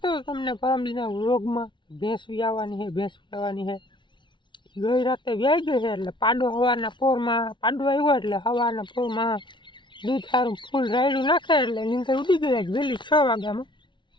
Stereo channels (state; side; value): late; right; 0.23 ms